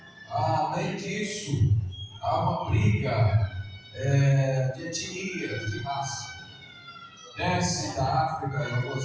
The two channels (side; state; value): both; identical; correlation 1.00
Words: além disso, há uma briga de etnias, de raça. Desce da África, em